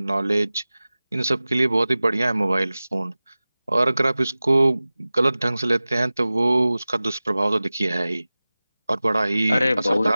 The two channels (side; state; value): both; inverted; correlation -0.98